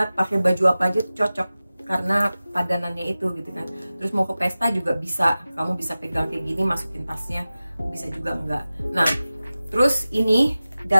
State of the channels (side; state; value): both; inverted; correlation -0.96